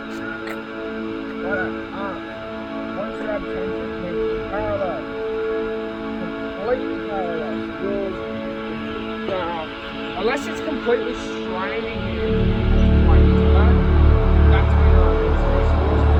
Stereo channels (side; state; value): both; identical; correlation 1.00